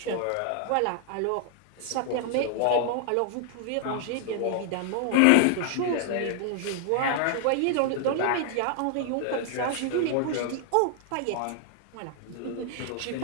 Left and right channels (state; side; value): different; both; correlation 0.00